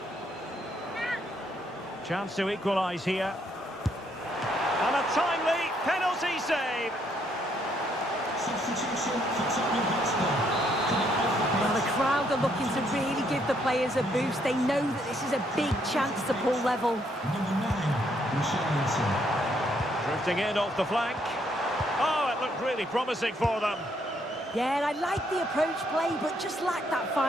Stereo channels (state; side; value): normal; both; correlation 0.72